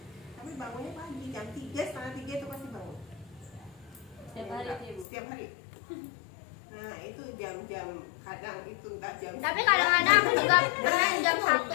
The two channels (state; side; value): drops out; right; at 5.1 s